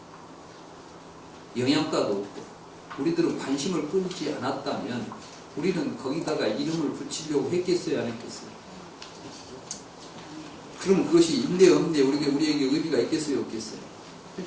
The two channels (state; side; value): identical; both; correlation 1.00